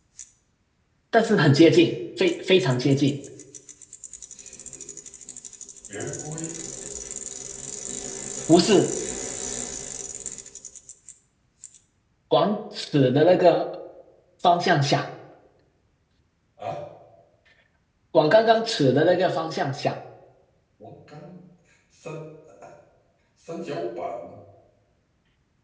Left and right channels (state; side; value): identical; both; correlation 1.00